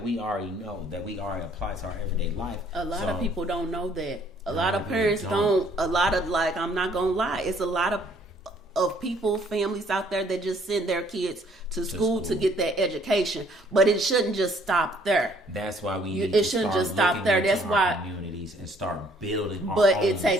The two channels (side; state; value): both; normal; correlation 0.62